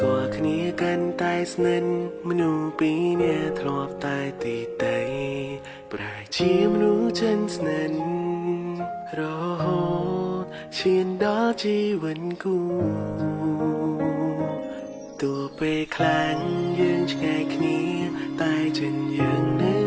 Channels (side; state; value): both; identical; correlation 1.00